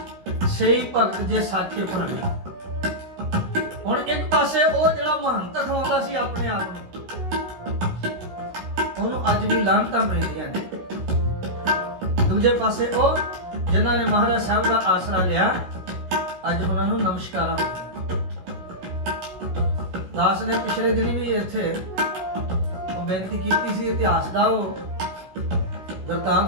ਸਹੀ ਭਗਤ ਜੇ ਸਾਚੇ ਭਾਣੇ। ਹੁਣ ਇੱਕ ਪਾਸੇ ਉਹ ਜਿਹੜਾ ਮਹੰਤ ਖਵਾਉਂਦਾ ਸੀ ਆਪਣੇ ਆਪ ਨੂੰ, ਉਹਨੂੰ ਅੱਜ ਵੀ ਲਾਹਨਤਾਂ ਮਿਲਦੀਆਂ ਨੇ। ਦੂਜੇ ਪਾਸੇ ਉਹ ਜਿਨ੍ਹਾਂ ਨੇ ਮਹਾਰਾਜ ਸਾਹਿਬ ਦਾ ਆਸਰਾ ਲਿਆ, ਅੱਜ ਉਹਨਾਂ ਨੂੰ ਨਮਸਕਾਰਾਂ ਹੁੰਦੀਆਂ। ਦਾਸ ਨੇ ਪਿਛਲੇ ਦਿਨੀ ਵੀ ਇੱਥੇ ਉਹ ਬੇਨਤੀ ਕੀਤੀ ਸੀ, ਇਤਿਹਾਸ ਦਾ ਉਹ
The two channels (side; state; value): left; late; 16 ms